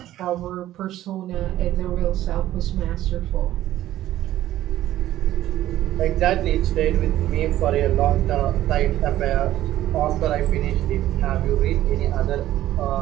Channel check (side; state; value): left; quieter; 13.8 dB